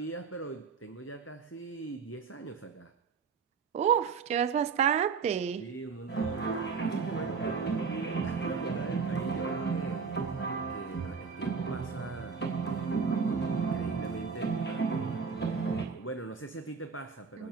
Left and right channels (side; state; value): left; quieter; 5.6 dB